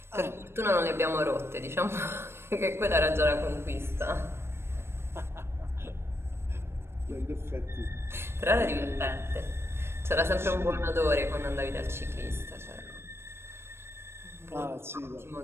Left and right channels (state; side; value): late; left; 0.12 ms